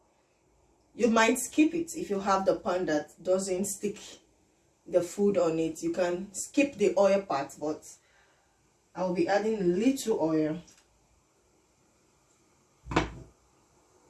you might skip it. If you have the pan that doesn't stick the food on it, you can skip the oil part, but I'll be adding a little oil.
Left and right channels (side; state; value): both; identical; correlation 1.00